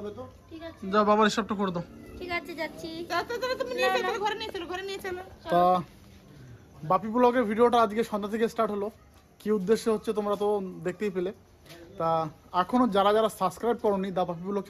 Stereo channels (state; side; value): identical; both; correlation 1.00